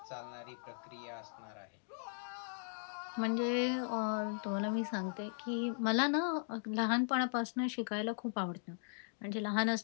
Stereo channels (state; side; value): silent; right; digital silence